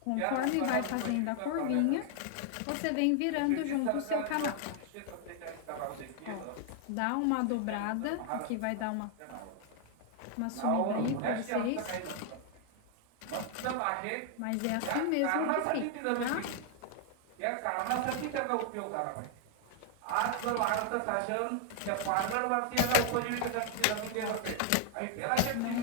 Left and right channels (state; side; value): different; both; correlation 0.00